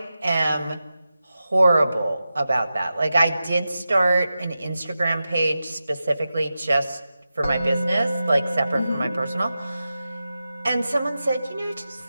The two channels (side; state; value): both; inverted; correlation -0.92